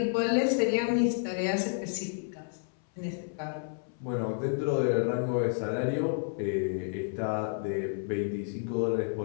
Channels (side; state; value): right; silent; 57 dB below the other